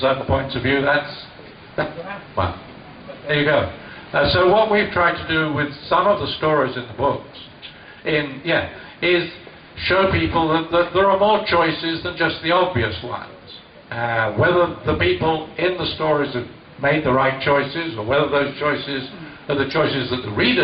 points of view, well, there you go. So what we've tried to do with some of the stories in the books, is show people that there are more choices than just the obvious ones. Whether the people in the stories have made the right choices, or whether those choices are the choices that the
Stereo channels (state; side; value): identical; both; correlation 1.00